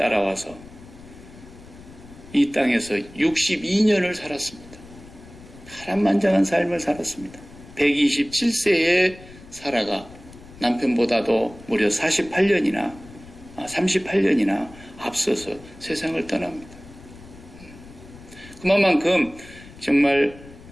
이 땅에서 62년을 살았습니다. 파란만장한 삶을 살았습니다. 127세의 사라가 남편보다도 무려 38년이나 앞서서 세상을 떠납니다. 그만큼 정말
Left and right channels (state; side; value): noise; left; rumble, 19 dB below the sound